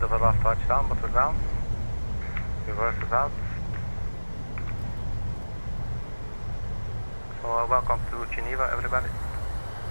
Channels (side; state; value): both; inverted; correlation -1.00